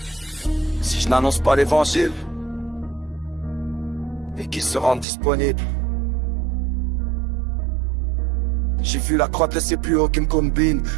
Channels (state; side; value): drops out; left; at 5.1 s